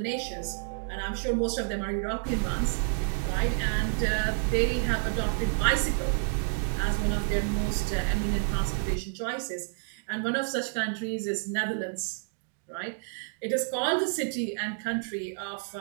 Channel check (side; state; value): left; silent; digital silence